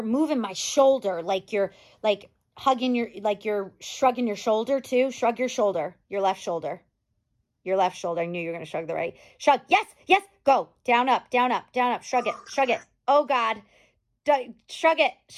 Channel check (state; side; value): identical; both; correlation 1.00